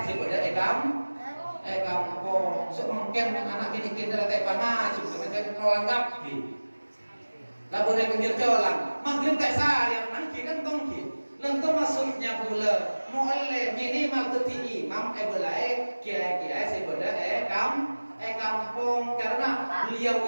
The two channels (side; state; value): both; inverted; correlation -1.00